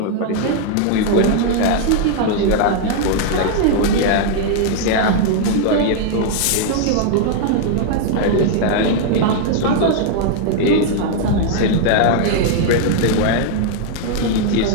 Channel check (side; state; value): both; different; correlation 0.00